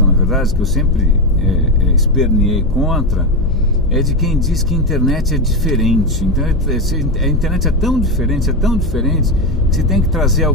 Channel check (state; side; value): noise; left; hum, 11 dB below the sound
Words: na verdade, que eu sempre esperneei contra, é de quem diz que a internet é diferente. Então a internet é tão diferente, que você tem que trazer